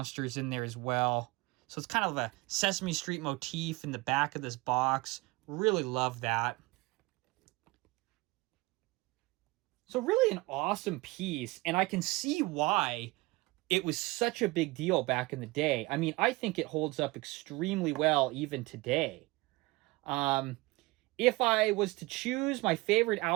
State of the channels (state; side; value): quieter; left; 22.6 dB